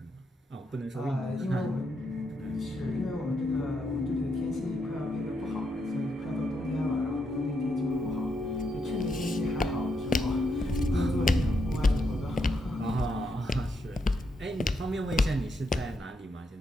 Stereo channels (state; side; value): normal; both; correlation 0.81